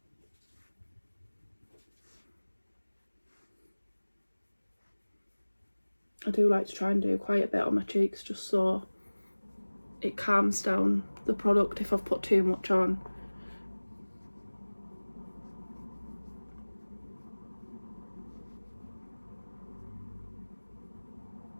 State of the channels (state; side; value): inverted; both; correlation -1.00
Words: I do like to try and do quite a bit on my cheeks just so it calms down the product if I've put too much on.